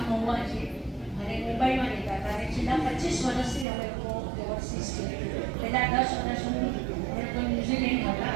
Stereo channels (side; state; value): left; drops out; at 3.7 s